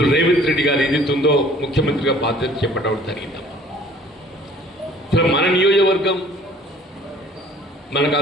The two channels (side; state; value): both; normal; correlation 0.53